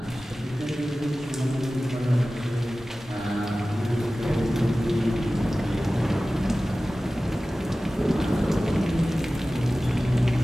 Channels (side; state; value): both; normal; correlation 0.96